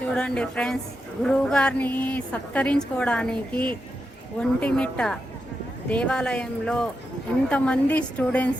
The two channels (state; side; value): normal; both; correlation 0.87